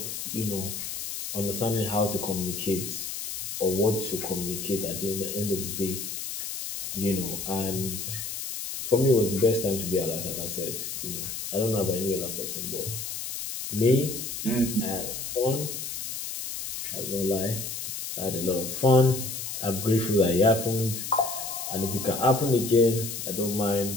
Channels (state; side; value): noise; left; hiss, 6 dB below the sound